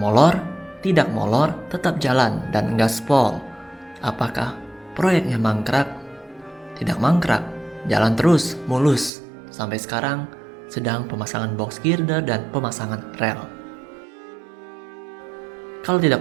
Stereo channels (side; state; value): left; drops out; at 9.1 s